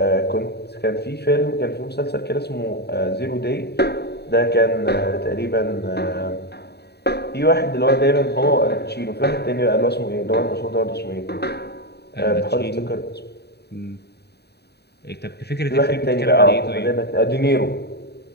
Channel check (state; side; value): late; right; 0.48 ms